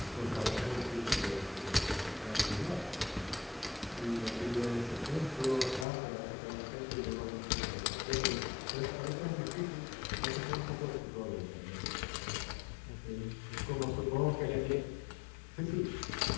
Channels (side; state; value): right; drops out; at 5.9 s